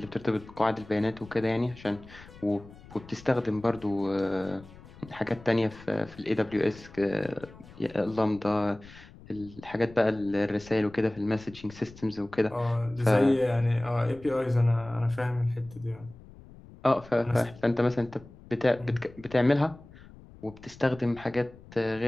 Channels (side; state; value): left; noise; rumble, 20 dB below the sound